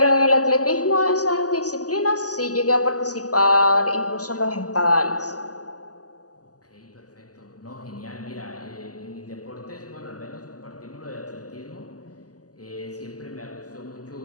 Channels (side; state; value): right; late; 0.67 ms